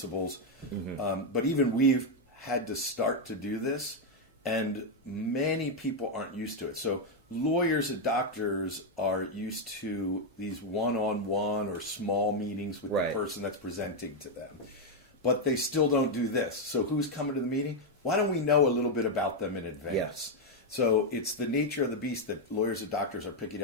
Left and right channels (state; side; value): normal; both; correlation 0.01